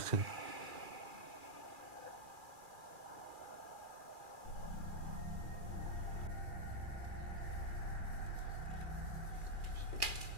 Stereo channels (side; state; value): left; late; 2.4 ms